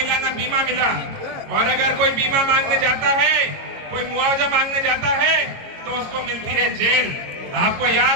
ना बीमा मिला। और अगर कोई बीमा मांगने जाता है, कोई मुआवजा मांगने जाता है तो उसको मिलती है जेल। आपको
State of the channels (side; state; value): left; late; 22 ms